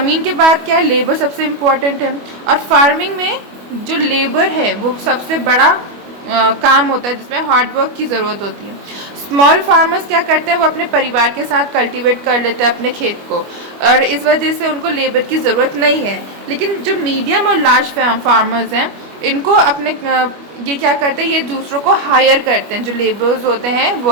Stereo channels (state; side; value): late; left; 25 ms